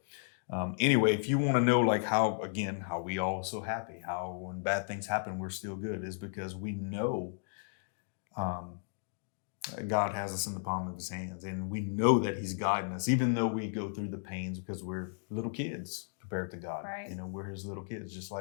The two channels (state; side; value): silent; right; digital silence